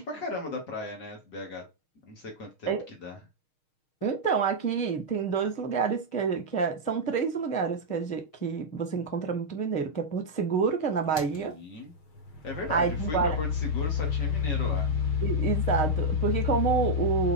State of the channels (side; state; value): right; late; 6.4 ms